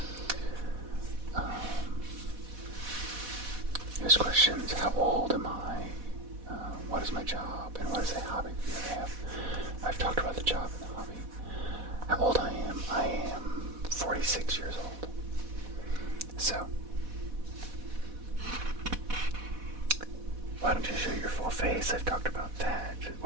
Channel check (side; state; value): left; late; 4.1 ms